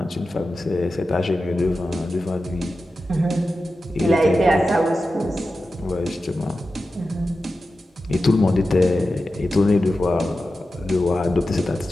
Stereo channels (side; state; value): both; normal; correlation 0.92